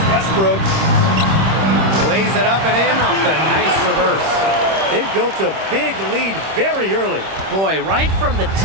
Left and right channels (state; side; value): late; left; 26 ms